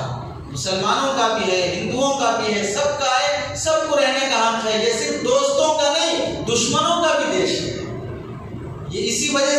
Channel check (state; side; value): identical; both; correlation 1.00